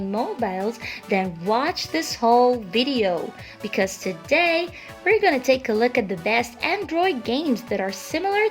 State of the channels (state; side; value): identical; both; correlation 1.00